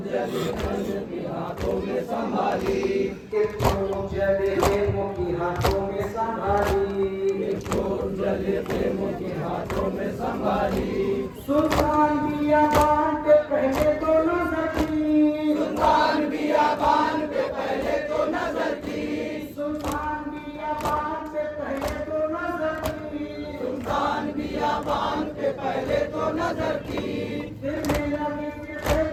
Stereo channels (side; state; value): both; identical; correlation 1.00